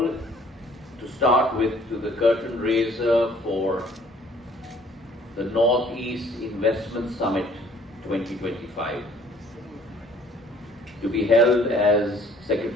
to start with to the curtain raiser for the Northeast Investment Summit 2025, to be held, as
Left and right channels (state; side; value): normal; both; correlation 0.57